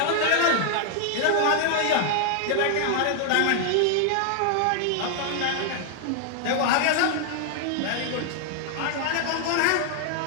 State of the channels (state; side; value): different; both; correlation 0.00